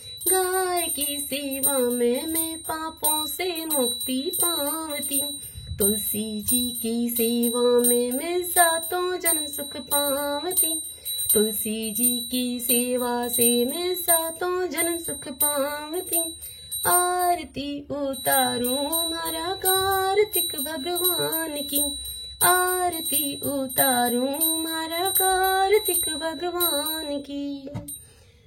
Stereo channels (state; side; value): identical; both; correlation 1.00